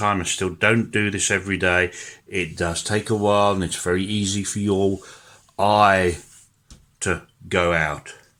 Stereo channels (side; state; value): both; identical; correlation 1.00